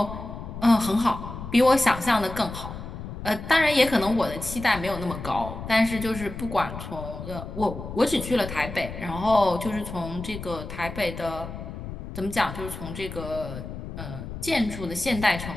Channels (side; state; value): left; noise; rumble, 9 dB below the sound